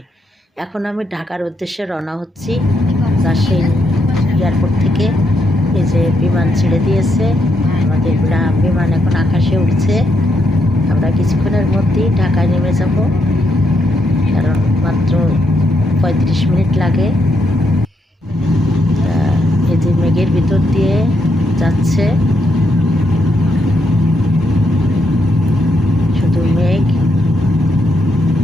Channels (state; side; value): normal; both; correlation 0.79